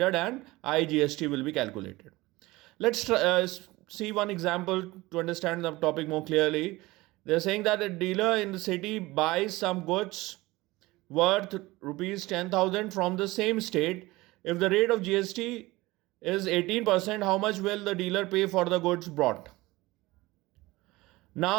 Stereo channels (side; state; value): left; quieter; 20.2 dB